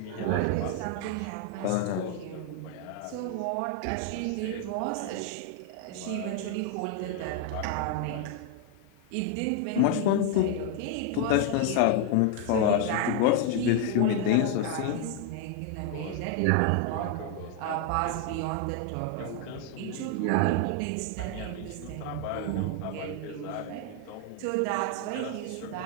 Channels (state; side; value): different; both; correlation 0.00